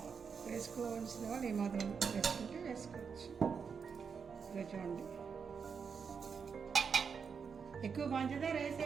వేసుకోవాల్సిన వాళ్ళు ఈ మాత్రం వేసుకుంటే వేసుకోవచ్చు. ఇలా చూడండి, ఎక్కువ పంచదార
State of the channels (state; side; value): quieter; left; 6.1 dB